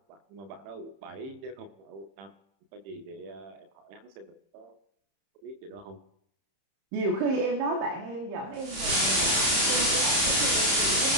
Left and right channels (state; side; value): late; left; 30 ms